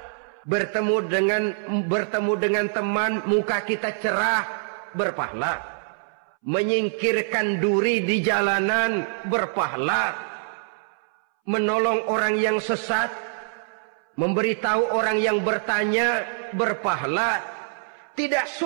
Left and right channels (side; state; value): left; silent; 62 dB below the other